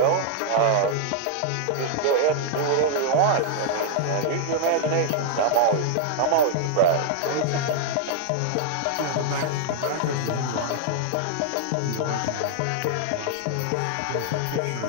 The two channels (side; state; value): both; different; correlation 0.00